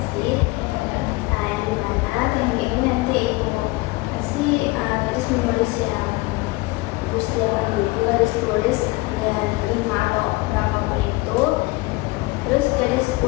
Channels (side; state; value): right; quieter; 22.5 dB